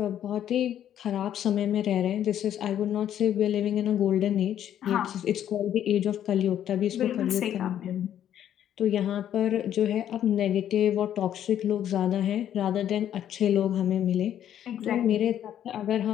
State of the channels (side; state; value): right; quieter; 10.6 dB